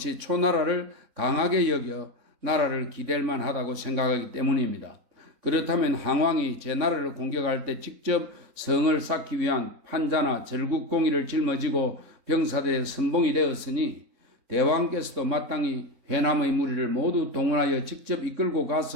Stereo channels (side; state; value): left; late; 3.6 ms